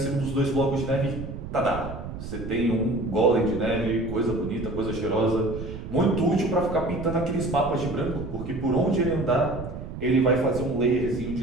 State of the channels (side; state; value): right; noise; rumble, 9 dB below the sound